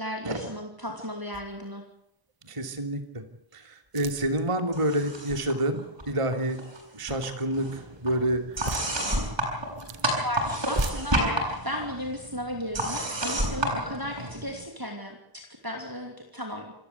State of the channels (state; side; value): late; left; 1.0 ms